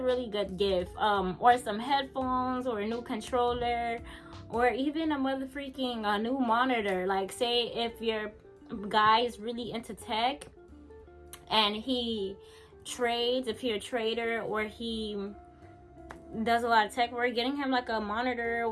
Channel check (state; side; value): identical; both; correlation 1.00